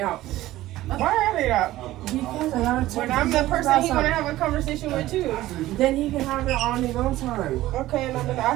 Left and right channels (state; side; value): quieter; left; 15.8 dB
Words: out. Why are they out? Because I gotta talk When to I'm the him person about he wanna something. have a conversation with too. Then he can have it on his own time. Okay, and I've been